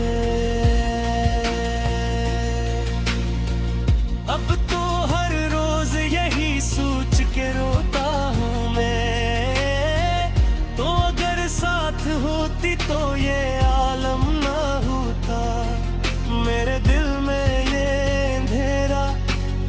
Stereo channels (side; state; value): both; identical; correlation 1.00